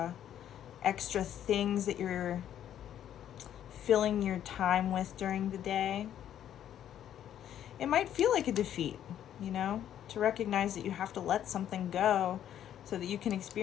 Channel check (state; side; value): quieter; right; 10.6 dB